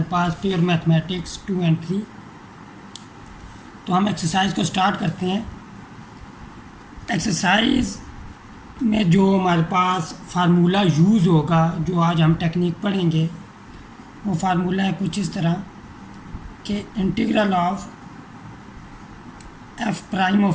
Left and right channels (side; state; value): both; identical; correlation 1.00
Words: पास, प्योर मैथमेटिक्स 2 and 3। तो हम एक्सरसाइज को स्टार्ट करते हैं। एक्सरसाइज में जो हमारे पास फार्मूला यूज़ होगा, जो आज हम टेक्निक पढ़ेंगे, वो फार्मूला है कुछ इस तरह कि integral of f prime